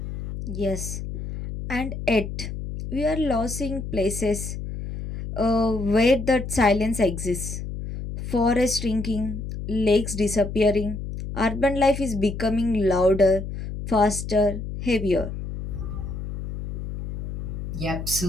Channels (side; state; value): left; noise; hum, 7 dB below the sound